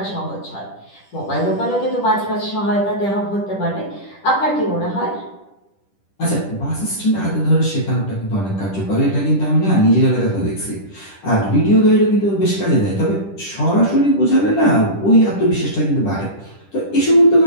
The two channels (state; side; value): late; right; 10 ms